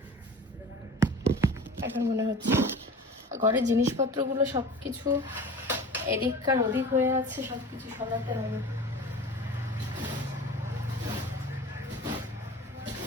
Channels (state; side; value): normal; both; correlation 0.38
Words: এখন মনে হচ্ছে ঘরের জিনিসপত্রগুলো সবকিছু এদিককার ওদিক হয়ে আছে, সবকিছু সরাতে হবে।